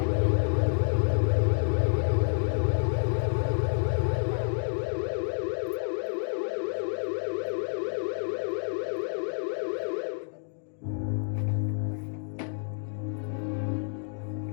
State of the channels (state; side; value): silent; right; 59 dB below the other